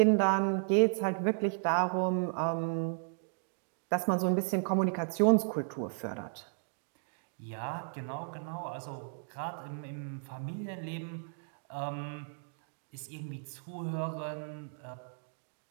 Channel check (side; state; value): left; silent; digital silence